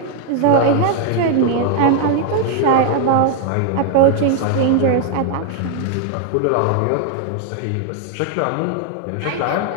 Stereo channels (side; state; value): both; different; correlation 0.00